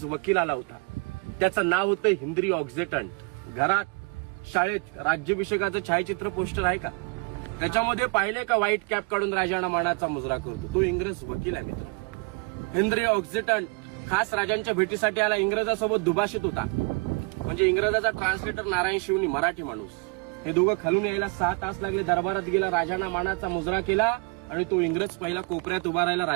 वकील आला होता. त्याचं नाव होतं हेनरी ऑक्झिटन. घरात, शाळेत राज्याभिषेकाचं छायाचित्र पोस्टर आहे का? त्याच्यामध्ये पाहिले का व्हाईट कॅप काढून राजांना मानाचा मुजरा करतो? तो इंग्रज वकील आहे मित्र. हेनरी ऑक्झिटन खास राजांच्या भेटीसाठी आला. इंग्रजासोबत दुभाषित होता. म्हणजे इंग्रजाचा ट्रान्सलेटर नारायण शिवनी, मराठी माणूस. हे दोघं खालून यायला 6 तास लागले. दरबारात गेला, राजांना मानाचा मुजरा केला आणि तो इंग्रज पहिला कोपऱ्यात उभा राहिला,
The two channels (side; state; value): left; quieter; 30.3 dB